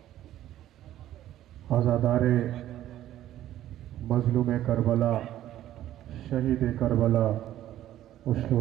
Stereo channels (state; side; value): quieter; left; 12.9 dB